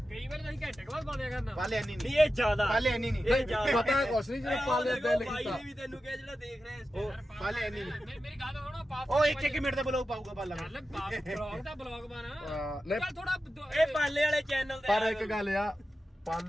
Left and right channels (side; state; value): both; normal; correlation 0.92